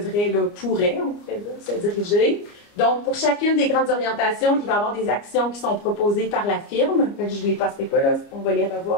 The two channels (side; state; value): right; late; 29 ms